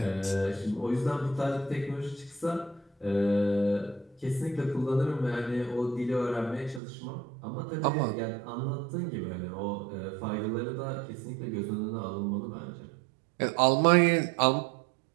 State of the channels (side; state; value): left; drops out; at 6.8 s